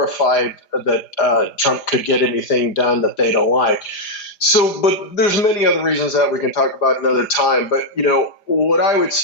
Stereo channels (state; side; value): late; right; 4.9 ms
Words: that Trump could get anything done that they don't like. So, but there's many other reasons that we can talk about another time. But, what I would